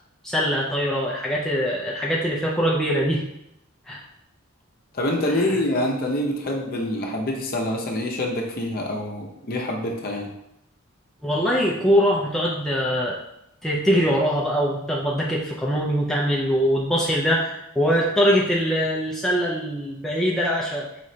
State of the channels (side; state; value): both; normal; correlation 0.55